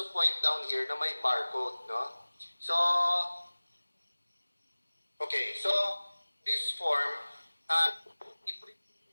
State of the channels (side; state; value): both; inverted; correlation -1.00